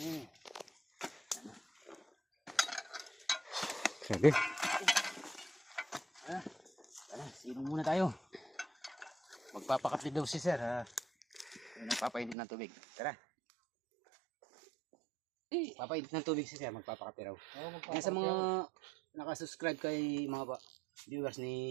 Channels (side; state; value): left; drops out; at 12.4 s